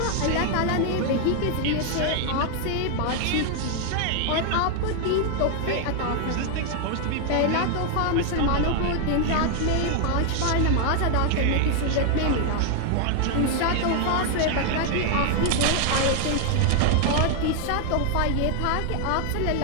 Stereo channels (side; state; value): both; different; correlation 0.00